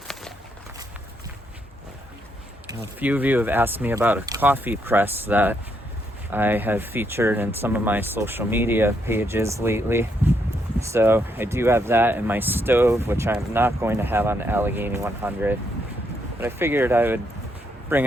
A few of you have asked me about a coffee press that I have featured in some of my social media pages lately. So I do have that in my stove, which I'm not going to have on the Allegheny 100. But I figured I would bring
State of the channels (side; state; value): both; normal; correlation 0.76